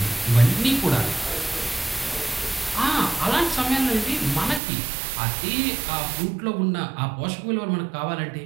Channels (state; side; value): drops out; left; at 4.6 s